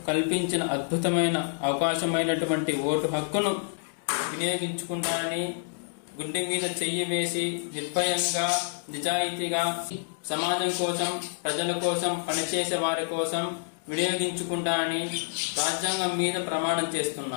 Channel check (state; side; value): silent; right; digital silence